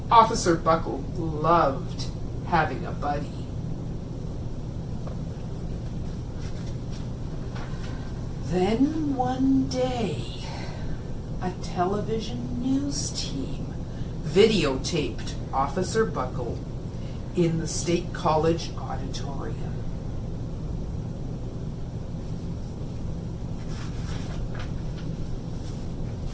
Officer Buckle loved having a buddy. Then one day, a television news team videotaped Officer Buckle in the State College auditorium.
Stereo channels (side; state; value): both; identical; correlation 1.00